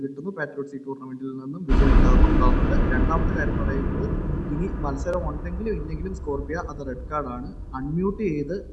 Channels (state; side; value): identical; both; correlation 1.00